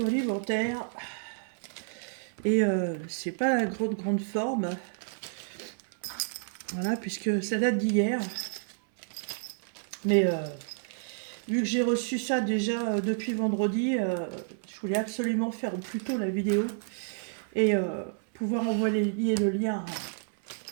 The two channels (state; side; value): silent; left; 58 dB below the other